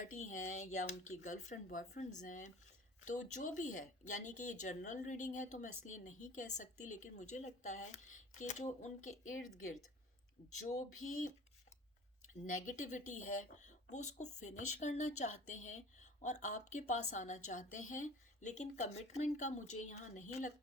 हैं या उनकी गर्लफ्रेंड बॉयफ्रेंड्स हैं, तो जो भी है, यानी कि ये जनरल रीडिंग है तो मैं इसलिए नहीं कह सकती, लेकिन मुझे लगता है कि जो उनके इर्द गिर्द जो भी नेगेटिविटी है वो उसको फिनिश करना चाहते हैं और आपके पास आना चाहते हैं, लेकिन कमिटमेंट का मुझे यहाँ नहीं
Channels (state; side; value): normal; both; correlation 0.43